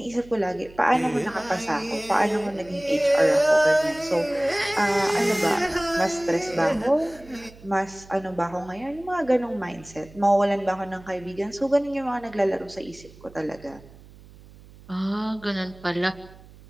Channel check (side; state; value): right; noise; hum, 22 dB below the sound